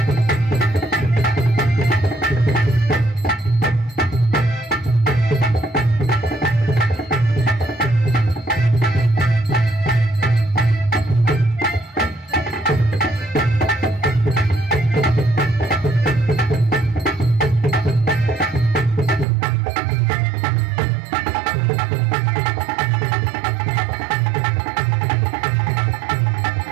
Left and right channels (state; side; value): drops out; left; at 19.2 s